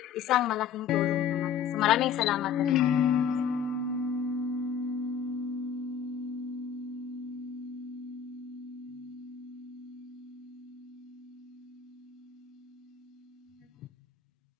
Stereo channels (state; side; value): quieter; right; 7.6 dB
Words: isang malaking tulong naman. So maraming salamat.